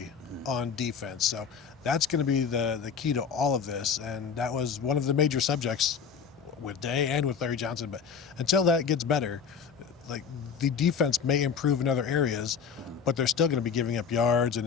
on defense. So that's going to be the key to all of this. And that was one of the major subjects with Day and with Larry Johnson. But until that gets better, the defense may improve in other areas, but they're still going to be giving up yards, and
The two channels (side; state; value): right; quieter; 6.6 dB